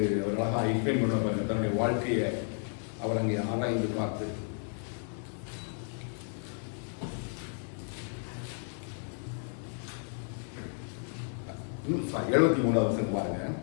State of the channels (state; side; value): silent; right; 56 dB below the other